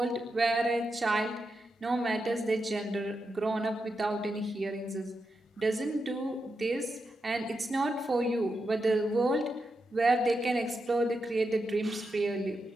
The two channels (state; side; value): normal; both; correlation 0.87